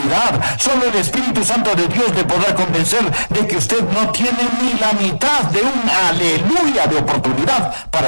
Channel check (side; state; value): both; inverted; correlation -1.00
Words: Solo el Espíritu Santo de Dios le podrá convencer de que usted no tiene ni la mitad de un aleluya de oportunidad